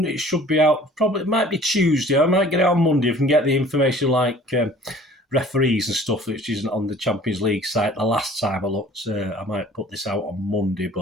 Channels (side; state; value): both; normal; correlation 0.50